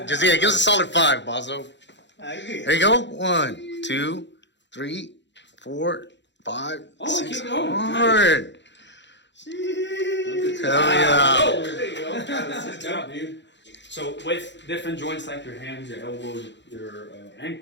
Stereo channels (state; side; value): late; right; 0.52 ms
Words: Just give us a solid 5, Bozo. There you go. 1, 2, 3, 4, 5. Oh, 6. keep going. Hard. Hell yeah. Oh, there you go. Good job, dude. So with different joints like your hands, your elbows, your